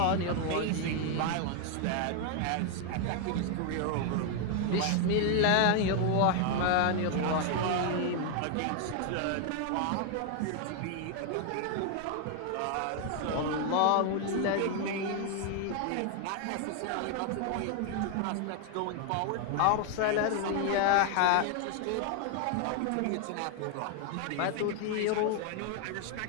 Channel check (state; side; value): different; both; correlation 0.00